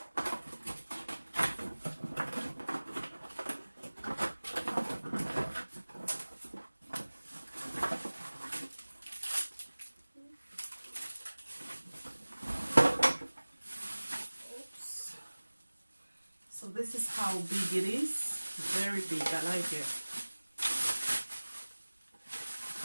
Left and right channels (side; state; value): both; inverted; correlation -1.00